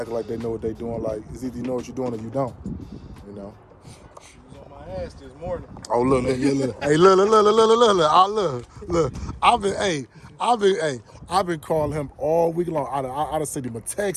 like they know what they doing. Like, it's either you know what you're doing or you don't. You know. He's on my ass this morning. Oh look, hey, look. I've been calling him all week long. I'd have sent him a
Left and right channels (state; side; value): identical; both; correlation 1.00